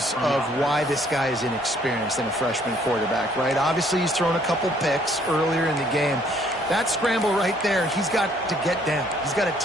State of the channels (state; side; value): normal; both; correlation 0.63